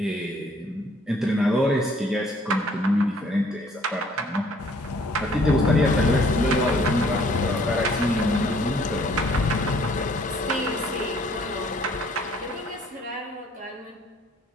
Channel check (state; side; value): normal; both; correlation 0.60